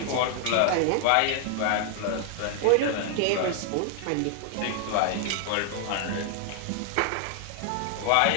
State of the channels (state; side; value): different; both; correlation 0.00